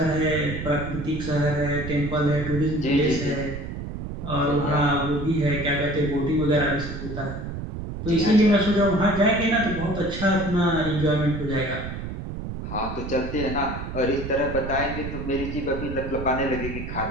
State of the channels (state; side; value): noise; right; rumble, 7 dB below the sound